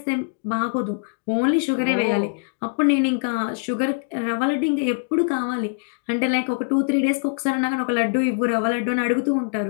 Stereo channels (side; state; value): right; silent; digital silence